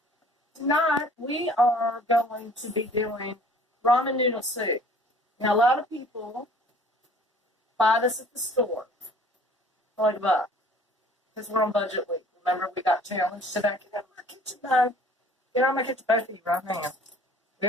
Tonight we are going to be doing ramen noodle soup. Now a lot of people buy this at the store for like a buck because we're on budget week. Remember we got challenged today. Get out of my kitchen, though. Get out of my kitchen, both of you, right now. We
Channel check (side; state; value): both; normal; correlation 0.52